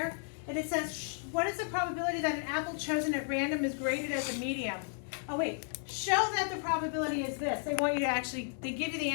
And it says, what is the probability that an apple chosen at random is graded as a medium? Oh wait, show that the probability is this. They want you to actually, they give you the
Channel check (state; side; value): silent; right; 55 dB below the other